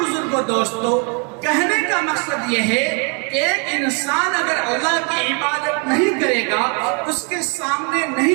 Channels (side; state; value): left; quieter; 35.9 dB